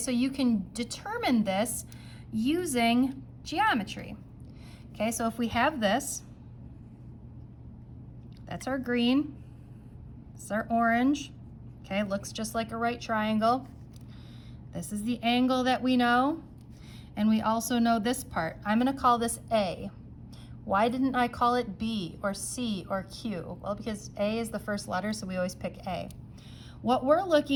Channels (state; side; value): identical; both; correlation 1.00